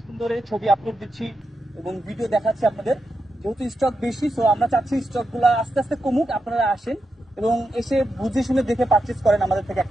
ধরে ছবি আপলোড দিচ্ছি এবং ভিডিও দেখাচ্ছি আপনাদের। যেহেতু স্টক বেশি, সো আমরা চাচ্ছি স্টক গুলা আস্তে আস্তে কমুক, আপনারা আসেন এবং এসে বুঝে শুনে দেখে পারচেজ করেন আমাদের থেকে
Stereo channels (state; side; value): normal; both; correlation 0.87